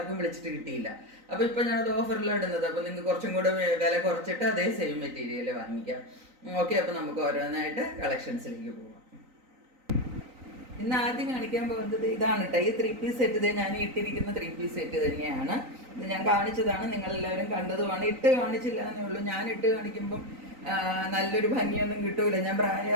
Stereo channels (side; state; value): left; late; 3.9 ms